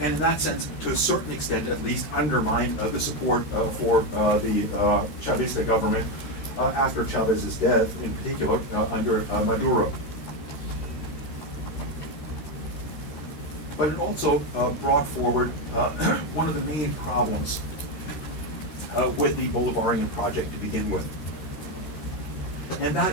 And in that sense, to a certain extent at least, undermined the support for the Chavista government after Chavez's death, in particular under Maduro. But it also brought forward one of the main problems with the Bolivarian project to begin with. And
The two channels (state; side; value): late; right; 13 ms